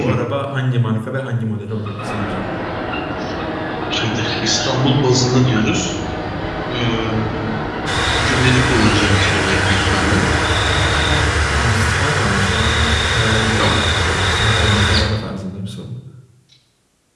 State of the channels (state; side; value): identical; both; correlation 1.00